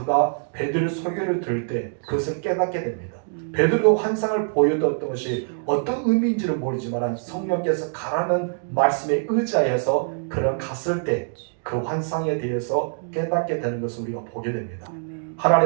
베드로의 소개를 들을 때 그것을 깨닫게 됩니다. 베드로가 환상을 보여줬던 것이 어떤 의미인지를 모르지만 성령께서 가라는 말씀에 의지하여서 그런 갔을 때 그 환상에 대해서 깨닫게 되는 것을 우리가 보게 됩니다. 아멘.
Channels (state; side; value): silent; left; digital silence